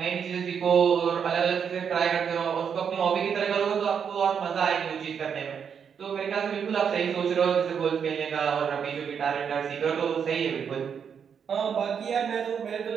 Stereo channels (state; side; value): quieter; left; 7.2 dB